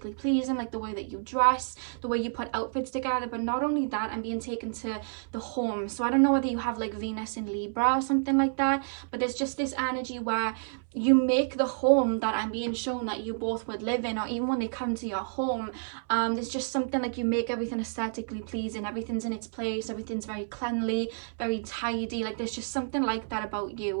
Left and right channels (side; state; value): left; silent; 58 dB below the other